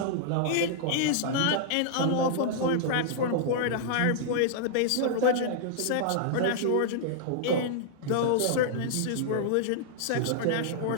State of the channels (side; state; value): both; different; correlation -0.01